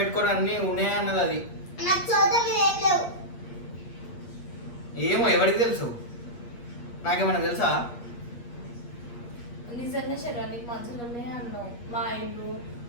అన్ని ఉన్నాయి అన్నది అది. నాకు చోట మీద ఏం లేవు. ఏమో ఎవరికి తెలుసు? నాకేమన్నా తెలుసా? నిజంగా శరీరానికి మంచులు ఉన్నాయి అన్నావు. మా ఇల్లు,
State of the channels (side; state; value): right; late; 8.4 ms